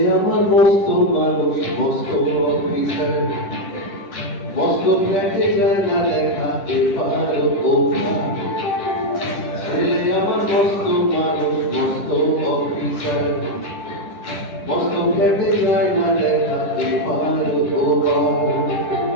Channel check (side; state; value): right; late; 10 ms